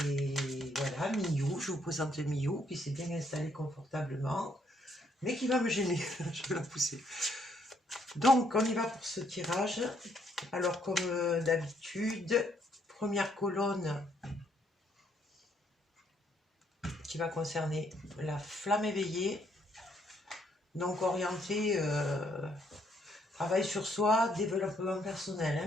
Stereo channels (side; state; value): both; normal; correlation 0.70